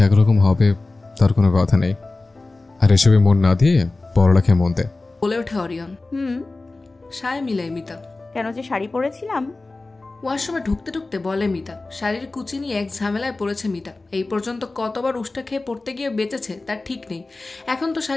একরকম হবে তার কোনো কথা নেই, আর এসবে মন না দিয়ে পড়ালেখায় মন দে, বলে ওঠে অরিয়ন। সায় মিলায় মিতা। কেন যে শাড়ি পরেছিলাম। ওয়াশরুমে ঢুকতে ঢুকতে বলে মিতা। শাড়ির কুচি নিয়ে এক ঝামেলায় পড়েছে মিতা। এই পর্যন্ত কতবার উষ্টা খেয়ে পড়তে গিয়ে বেঁচেছে তার ঠিক নেই। এখন তো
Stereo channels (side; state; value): right; quieter; 3.3 dB